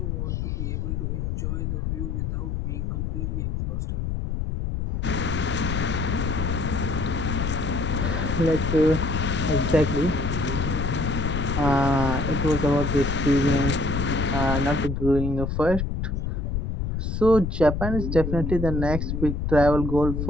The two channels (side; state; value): left; noise; rumble, 2 dB below the sound